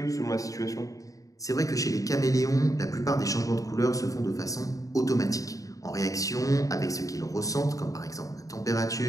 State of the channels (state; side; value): late; right; 0.16 ms